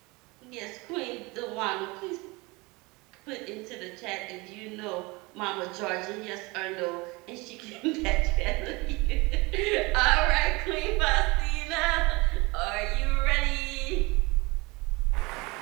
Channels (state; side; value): quieter; left; 25.0 dB